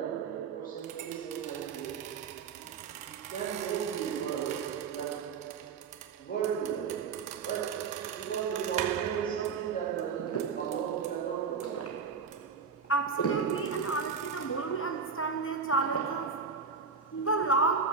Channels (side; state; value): left; quieter; 5.5 dB